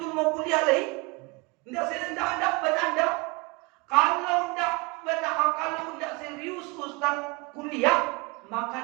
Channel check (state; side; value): quieter; left; 26.4 dB